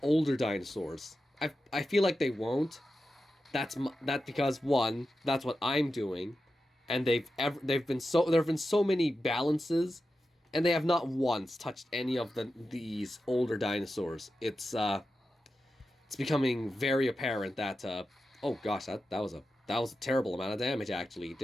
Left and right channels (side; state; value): both; normal; correlation 0.91